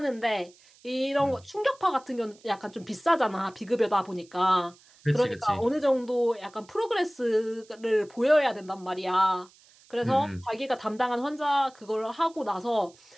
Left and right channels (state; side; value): noise; right; hiss, 27 dB below the sound